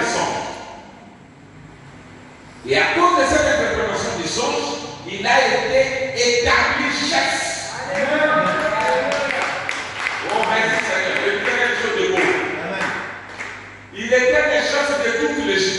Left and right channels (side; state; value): both; identical; correlation 1.00